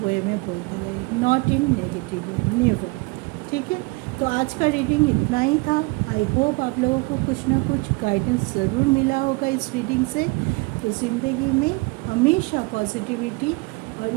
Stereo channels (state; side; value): quieter; left; 27.3 dB